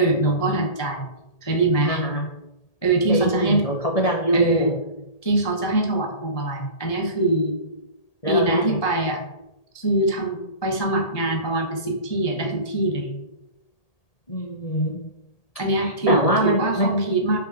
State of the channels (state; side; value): late; right; 1.8 ms